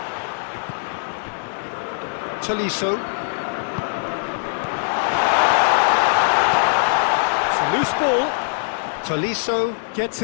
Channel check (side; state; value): right; silent; digital silence